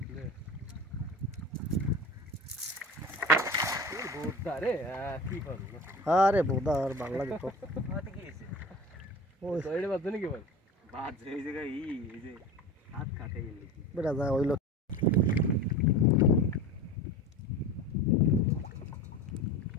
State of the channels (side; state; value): both; normal; correlation 0.33